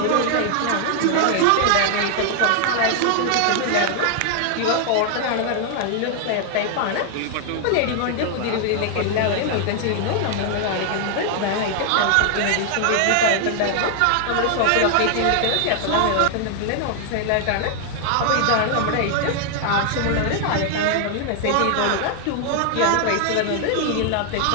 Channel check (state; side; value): different; both; correlation 0.00